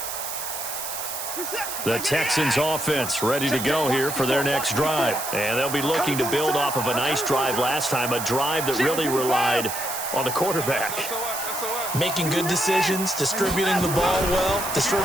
The Texans offense ready to go here for their next drive. And they'll be looking to build off of a nice drive last time, a drive that really relied on the quarterback. Making good decisions, distributing the ball well,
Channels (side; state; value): right; noise; hiss, 6 dB below the sound